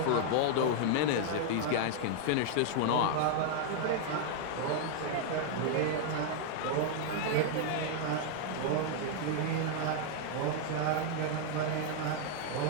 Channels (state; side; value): different; both; correlation 0.00